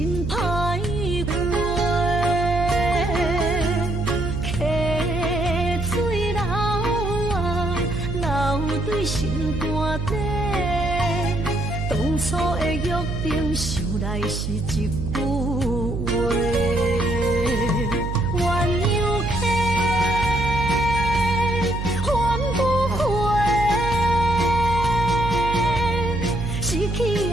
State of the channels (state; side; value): noise; right; hum, 4 dB below the sound